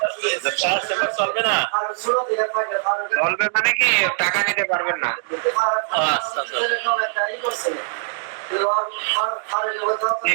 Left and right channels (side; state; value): left; silent; digital silence